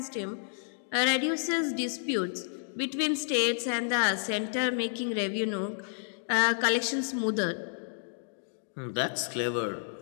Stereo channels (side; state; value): right; silent; digital silence